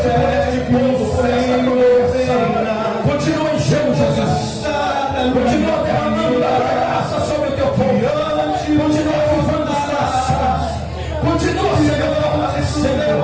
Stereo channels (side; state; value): both; identical; correlation 1.00